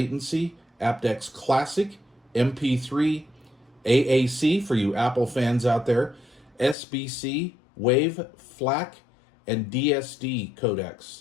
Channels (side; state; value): right; drops out; at 6.8 s